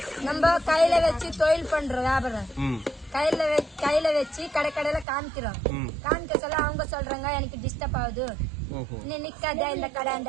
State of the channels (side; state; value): left; drops out; at 5.1 s